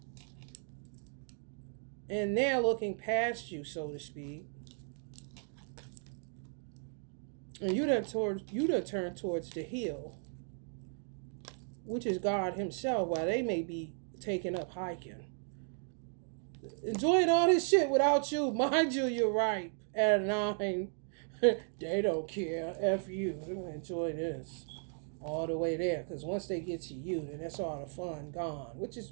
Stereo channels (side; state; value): left; silent; 54 dB below the other